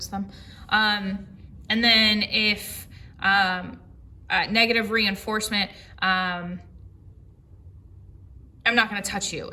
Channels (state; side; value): identical; both; correlation 1.00